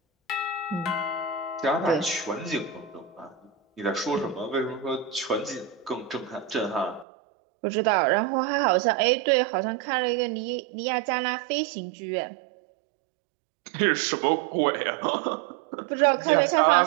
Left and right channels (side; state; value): left; drops out; at 7.1 s